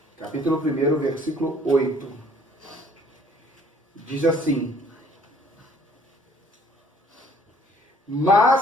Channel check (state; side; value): normal; both; correlation 0.59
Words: Capítulo 1, versículo 8. Diz assim: